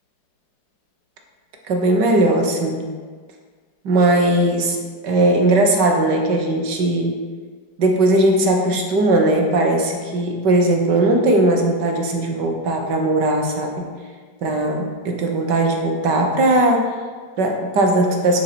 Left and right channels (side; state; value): left; late; 5.2 ms